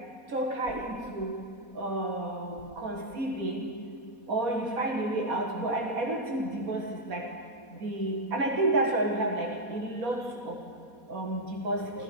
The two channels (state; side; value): late; left; 4.2 ms